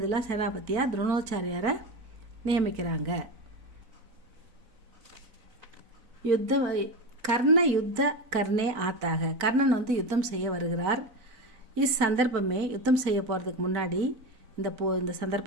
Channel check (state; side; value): late; left; 4.0 ms